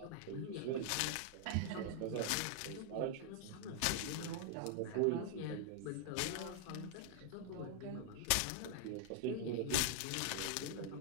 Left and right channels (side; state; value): both; different; correlation 0.00